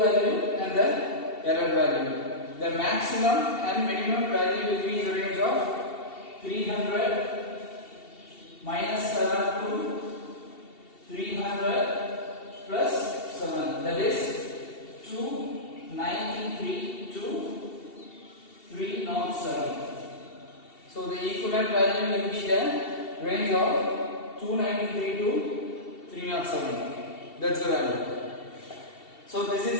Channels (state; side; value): late; right; 2.7 ms